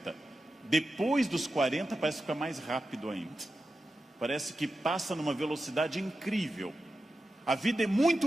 Depois dos 40 parece ficar mais rápido ainda. Parece que passa numa velocidade incrível. A vida é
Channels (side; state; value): both; normal; correlation 0.91